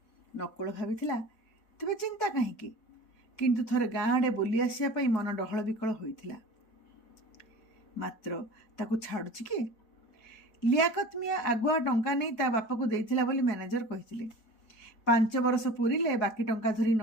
ନକୁଳ ଭାବିଥିଲା ତେବେ ଚିନ୍ତା କାହିଁକି, କିନ୍ତୁ ଥରେ ଗାଁ ଆଡ଼େ ବୁଲି ଆସିବା ପାଇଁ ମନ ଡହଳ ବିକଳ ହୋଇଥିଲା। ମାତ୍ର ତାକୁ ଛାଡ଼ୁଛି କିଏ? ଲିଆକତ ମିଆଁ ଆଗୁଆ ଟଙ୍କା ନେଇ ତା ବାପାକୁ ଦେଇଥିଲା ବୋଲି ମ୍ୟାନେଜର କହିଥିଲେ। 5 ବର୍ଷ ପୁରିଲେ ବାକି ଟଙ୍କା ଧରି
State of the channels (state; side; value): late; right; 4.8 ms